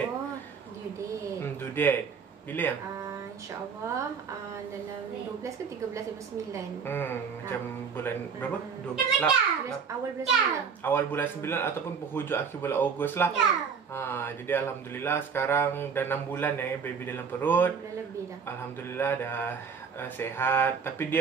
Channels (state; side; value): quieter; left; 6.2 dB